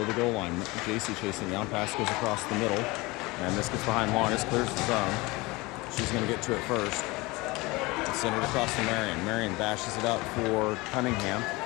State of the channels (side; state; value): right; quieter; 23.0 dB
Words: the goal line. JC chasing down. Pass goes across the middle. And this gets behind Longest. Clears the zone. She's going to get to it first. Send it across to Marion. Marion bashes it up for Cunningham.